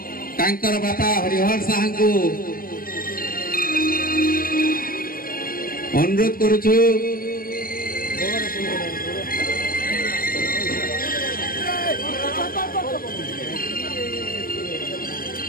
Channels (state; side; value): late; right; 0.42 ms